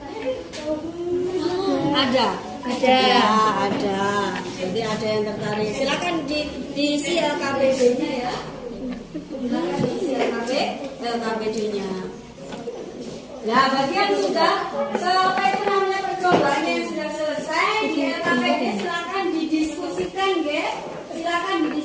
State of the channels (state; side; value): identical; both; correlation 1.00